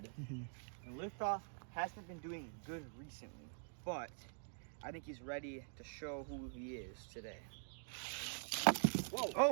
Mhm. And Liftoff hasn't been doing good recently, but I think he's ready to show who he is today. Whoa!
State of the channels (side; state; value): left; silent; digital silence